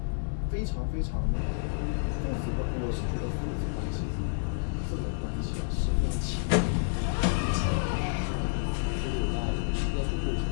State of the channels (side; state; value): right; silent; digital silence